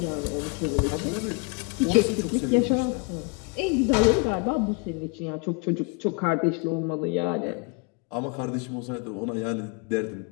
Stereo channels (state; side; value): quieter; right; 31.9 dB